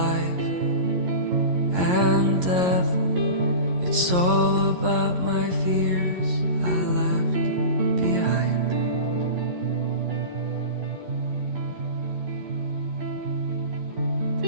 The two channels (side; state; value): left; late; 11 ms